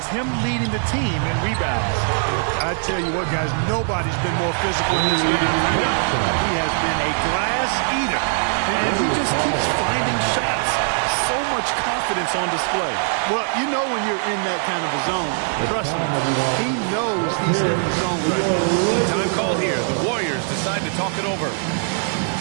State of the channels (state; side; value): silent; left; 65 dB below the other